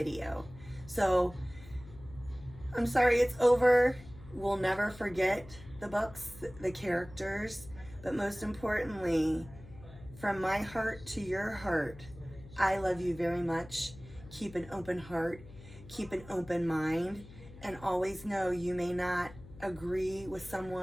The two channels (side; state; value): left; noise; hum, 18 dB below the sound